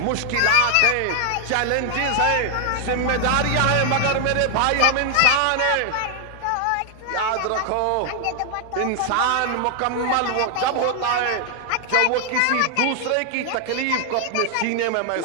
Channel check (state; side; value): different; both; correlation 0.00